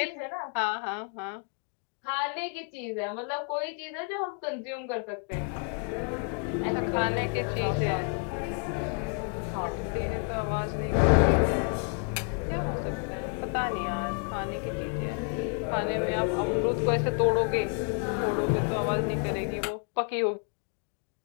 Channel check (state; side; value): quieter; right; 38.5 dB